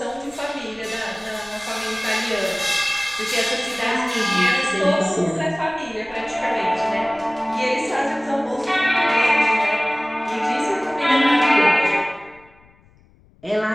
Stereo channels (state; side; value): noise; left; rumble, 30 dB below the sound